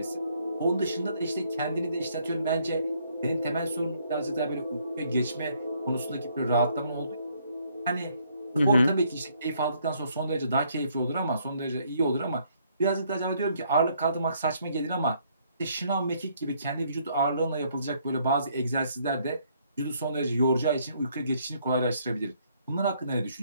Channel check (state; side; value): inverted; both; correlation -0.68